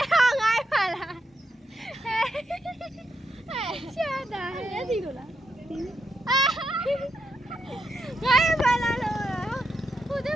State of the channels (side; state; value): both; normal; correlation 0.81